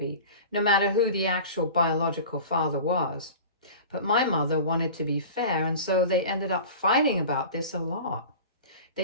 no matter who the actual biological father was. But my mother wanted to be fair, and so they ended up fighting about this a lot.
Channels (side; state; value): both; inverted; correlation -0.37